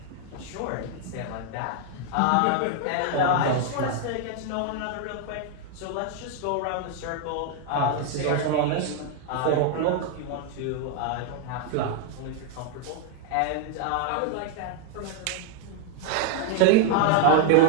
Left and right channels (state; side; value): different; both; correlation 0.00